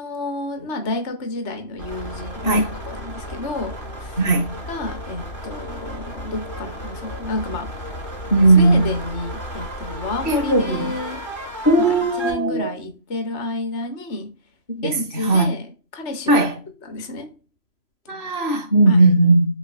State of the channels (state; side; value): late; right; 3.0 ms